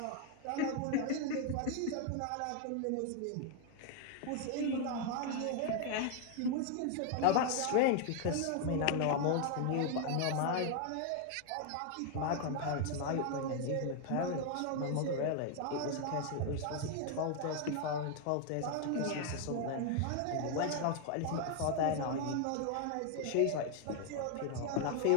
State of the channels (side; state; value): both; different; correlation 0.00